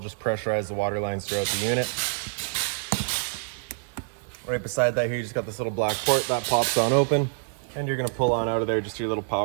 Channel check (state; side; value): silent; left; 61 dB below the other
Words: pressurize the water lines throughout the unit. Right beside that here, you just got this little black port that pops on open. And you're going to pull on out of there just your little